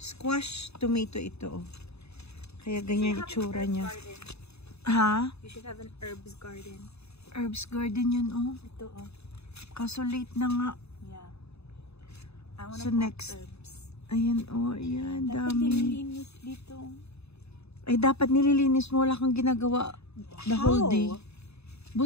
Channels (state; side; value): late; right; 0.79 ms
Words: tomato ito, oh. Kaya ganyan itsura niya. Ha? You should have an herbs garden. Herbs garden yan, oh. Ito, oh. Kaso late na nga. Yeah. I wanna So plant next. herbs. Ayan, oh, ayan, Dapat dami. nililinis dito. Ay, dapat nililinis mo. Wala kang ginagawa the whole day.